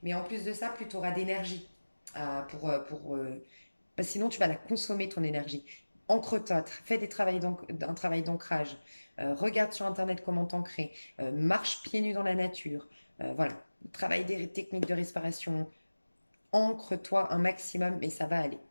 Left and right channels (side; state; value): both; inverted; correlation -1.00